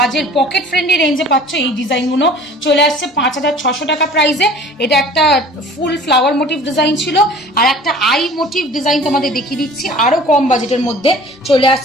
পকেট ফ্রেন্ডলি রেঞ্জে পাচ্ছ। এই ডিজাইনগুলো চলে আসছে 5,600 টাকা প্রাইসে। এটা একটা ফুল ফ্লাওয়ার মোটিভ ডিজাইন ছিল, আর একটা আই মোটিভ ডিজাইন তোমাদের দেখিয়ে দিচ্ছি আরো কম বাজেটের মধ্যে চলে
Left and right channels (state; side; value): normal; both; correlation 0.46